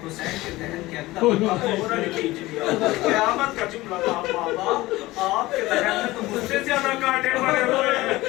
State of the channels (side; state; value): right; quieter; 18.8 dB